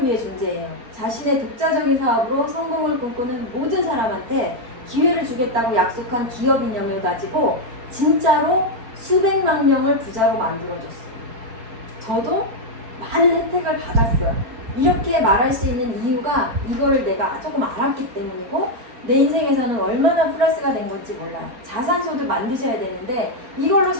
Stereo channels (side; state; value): left; late; 4.3 ms